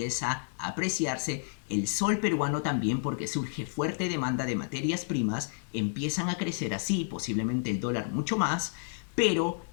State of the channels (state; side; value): silent; right; 58 dB below the other